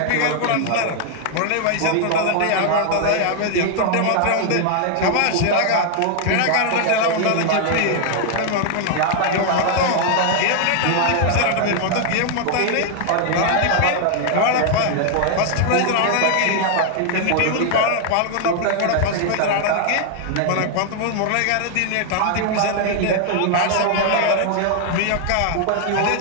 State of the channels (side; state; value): both; different; correlation 0.00